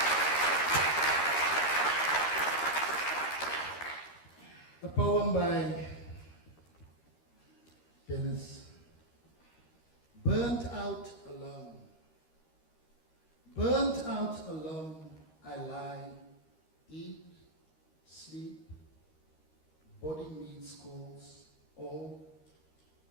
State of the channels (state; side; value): late; right; 13 ms